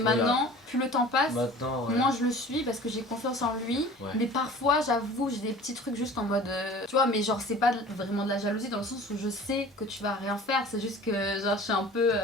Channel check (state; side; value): normal; both; correlation 0.44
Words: plus le temps passe, Maintenant, ouais. moins je le suis parce que j'ai confiance en lui. Ouais. Mais parfois, j'avoue, j'ai des petits trucs juste en mode. Tu vois, mais genre, c'est pas vraiment de la jalousie dans le sens où je sais que tu vas rien faire. C'est juste que, genre, je suis un peu.